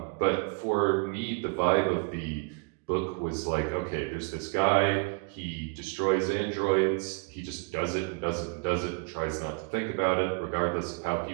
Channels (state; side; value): quieter; left; 34.8 dB